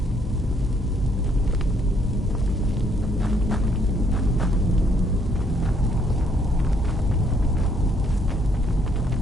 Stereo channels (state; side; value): normal; both; correlation 0.68